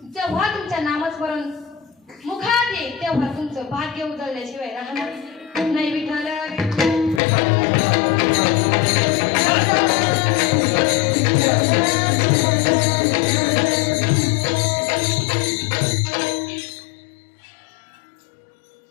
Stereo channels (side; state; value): right; drops out; at 7.2 s